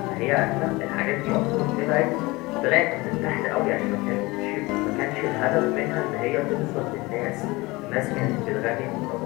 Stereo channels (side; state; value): right; quieter; 22.4 dB